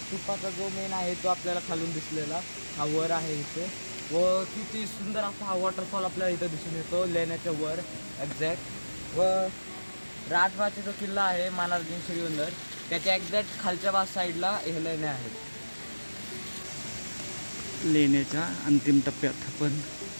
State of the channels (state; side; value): inverted; both; correlation -1.00